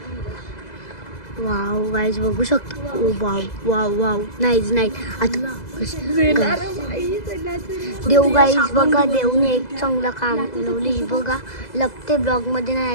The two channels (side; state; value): right; late; 2.0 ms